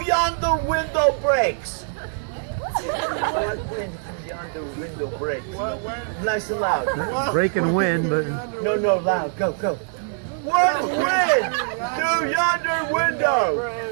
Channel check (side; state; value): left; silent; digital silence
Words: yonder window breaks? What wind through yonder window breaks? What wind? Nice and loud. Breaking wind, but No, loud. Go. What wind through yonder window?